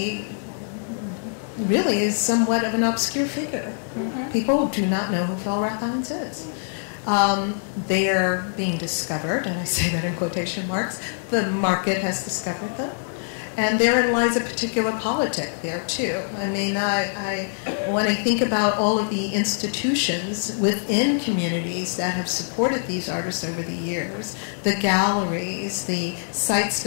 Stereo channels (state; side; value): silent; right; digital silence